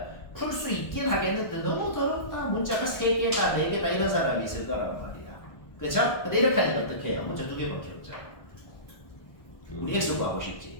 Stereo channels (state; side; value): late; right; 1.2 ms